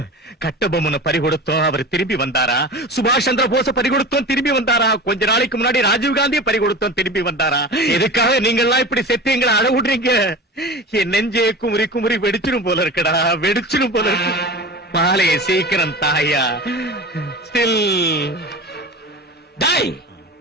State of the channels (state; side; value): normal; both; correlation 0.32